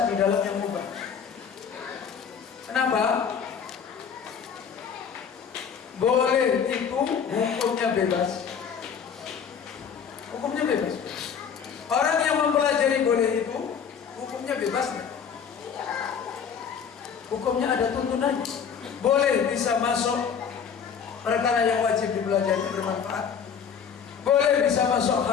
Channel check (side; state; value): right; quieter; 7.1 dB